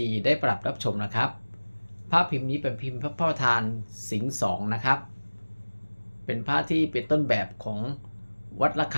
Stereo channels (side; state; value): both; inverted; correlation -1.00